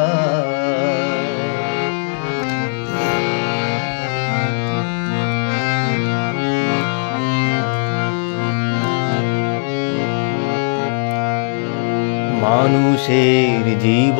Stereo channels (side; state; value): right; silent; digital silence